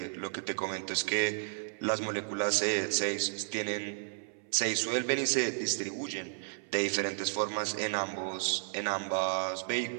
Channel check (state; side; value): silent; left; 55 dB below the other